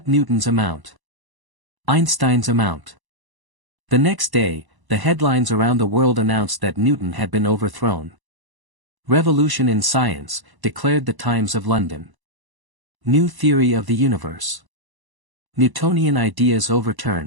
Newton's amount. Einstein's amount. The next day, the headlines around the world announced that Newton had been overthrown. Revolution in science, declared the Times of London. New theory of the universe. Newtonian ideas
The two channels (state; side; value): late; left; 1.0 ms